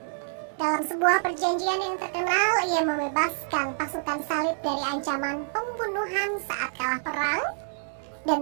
Dalam sebuah perjanjian yang terkenal, ia membebaskan pasukan salib dari ancaman pembunuhan saat kalah perang dan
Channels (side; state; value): left; silent; digital silence